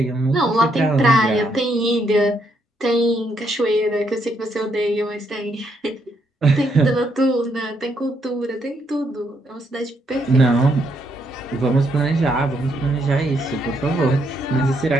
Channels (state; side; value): normal; both; correlation 0.75